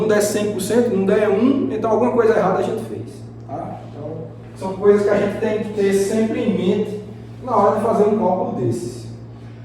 der 100%, não der 1, então alguma coisa errada a gente fez. Tá? Então, são coisas que a gente tem que ter sempre em mente na hora de fazer um cálculo desses.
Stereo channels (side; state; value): both; identical; correlation 1.00